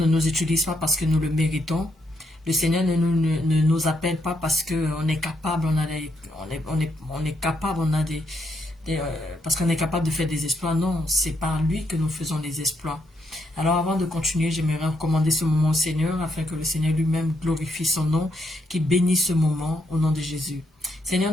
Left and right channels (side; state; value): both; normal; correlation 0.77